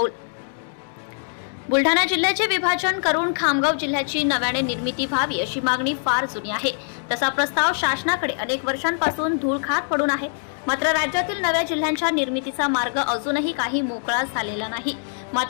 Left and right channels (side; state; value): right; silent; digital silence